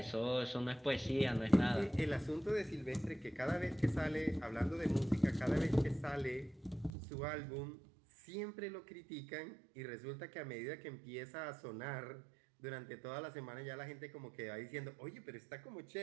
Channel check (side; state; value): left; drops out; at 6.9 s